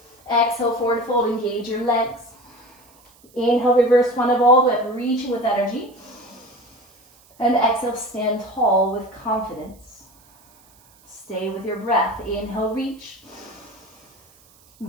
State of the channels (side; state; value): right; noise; hiss, 29 dB below the sound